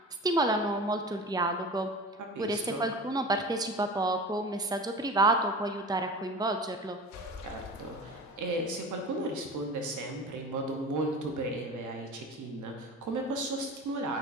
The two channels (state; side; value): normal; both; correlation 0.35